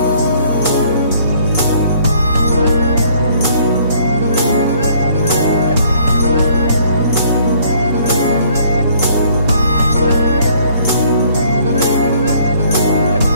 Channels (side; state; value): both; inverted; correlation -0.61